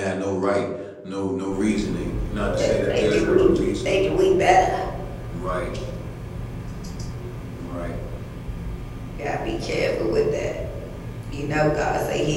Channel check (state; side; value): identical; both; correlation 1.00